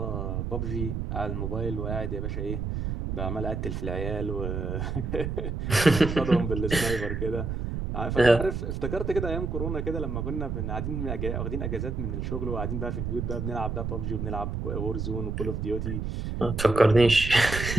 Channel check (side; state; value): right; noise; rumble, 3 dB below the sound